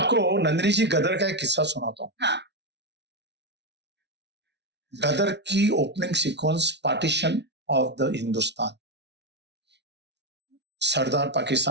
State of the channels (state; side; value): late; left; 0.50 ms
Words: नंदिनी जी गदर का एक किस्सा सुनाता हूँ। हाँ। गदर की opening sequence, partition of the Hindustan. सरदार